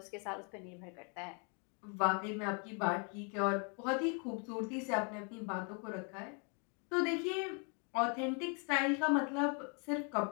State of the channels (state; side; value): quieter; right; 37.2 dB